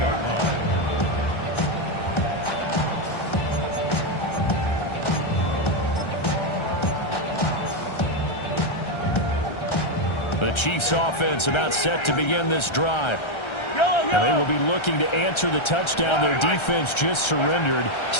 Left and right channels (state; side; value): late; right; 1.3 ms